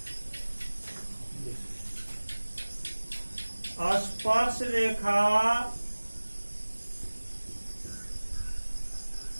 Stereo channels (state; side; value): inverted; both; correlation -1.00